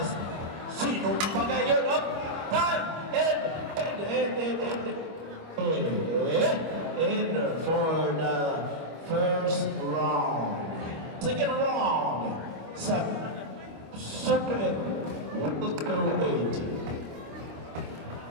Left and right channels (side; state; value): left; late; 25 ms